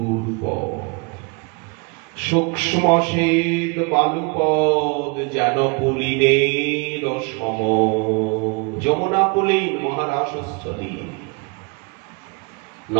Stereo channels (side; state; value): left; quieter; 31.4 dB